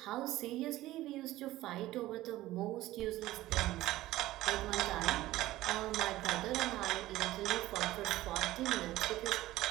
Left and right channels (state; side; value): quieter; left; 16.3 dB